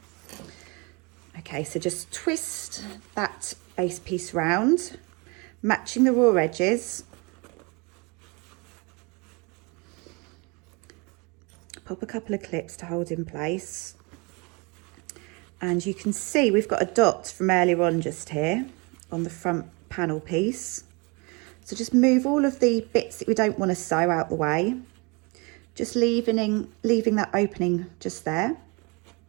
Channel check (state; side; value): quieter; left; 29.4 dB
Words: Okay, so just twist that base piece round, matching the raw edges. Pop a couple of clips to hold in place. And you can see we've got a dot from earlier on just here on the front panel piece. So just move all of the bits that we don't want to sew out the way, just leaving that opening just there.